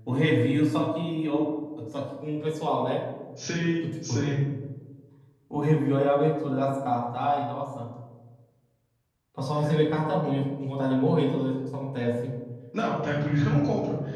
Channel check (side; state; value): both; identical; correlation 1.00